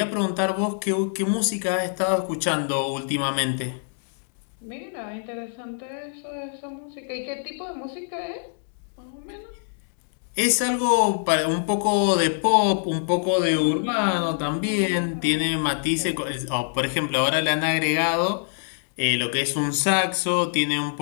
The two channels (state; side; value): silent; right; digital silence